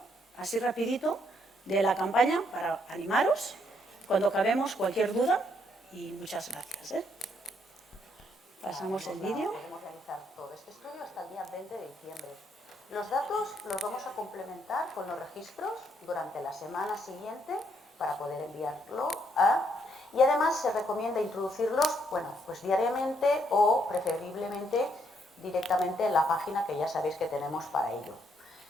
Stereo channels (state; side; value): normal; both; correlation 0.72